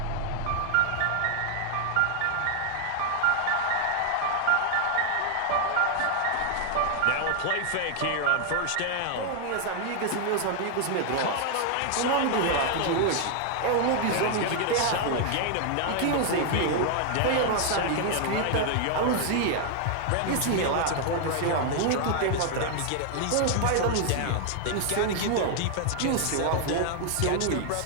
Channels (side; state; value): both; different; correlation 0.00